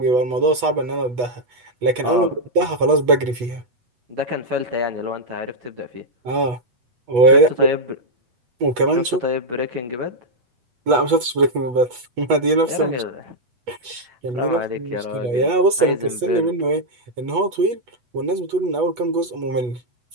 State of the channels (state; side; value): late; left; 8.2 ms